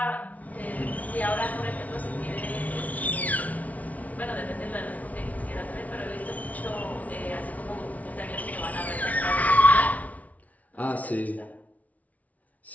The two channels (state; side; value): late; right; 0.071 ms